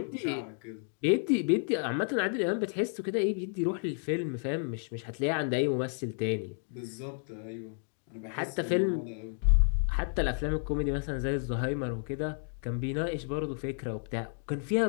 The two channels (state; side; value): silent; right; 57 dB below the other